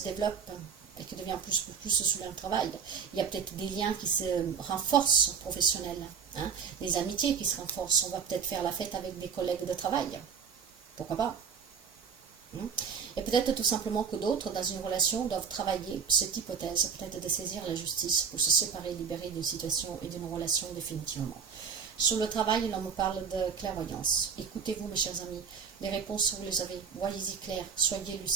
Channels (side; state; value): left; quieter; 6.4 dB